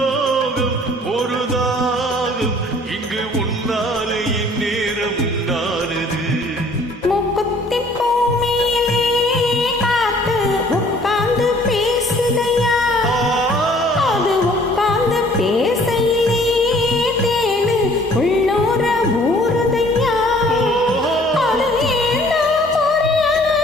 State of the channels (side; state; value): both; normal; correlation 0.56